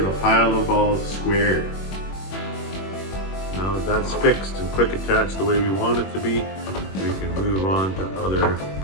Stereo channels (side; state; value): right; late; 21 ms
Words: a pile of balls squared. Now that that's fixed and quick attached the way we want it to be, we can move on to other